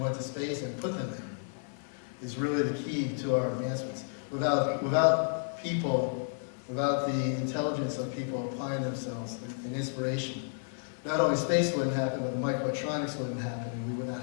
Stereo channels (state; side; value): silent; right; digital silence